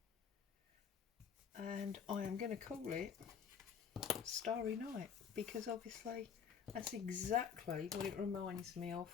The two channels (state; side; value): quieter; right; 7.2 dB